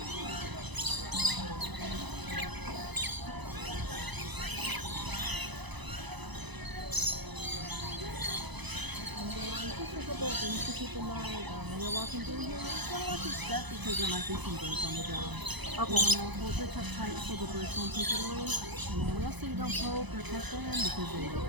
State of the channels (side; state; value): left; late; 1.0 ms